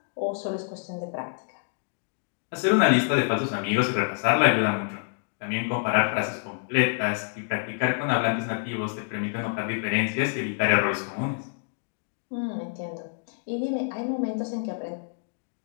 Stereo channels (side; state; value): right; silent; digital silence